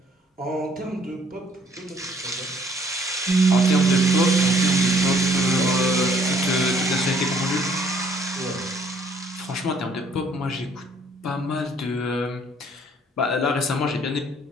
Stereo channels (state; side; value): normal; both; correlation 0.62